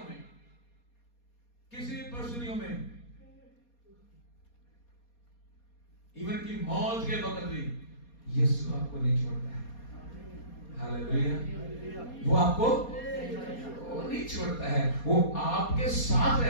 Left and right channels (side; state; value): right; late; 4.2 ms